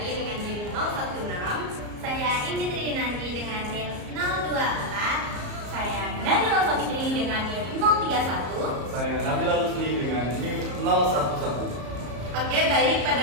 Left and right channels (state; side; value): late; left; 34 ms